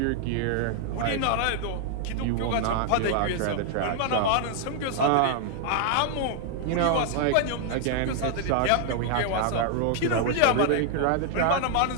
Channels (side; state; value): both; different; correlation 0.00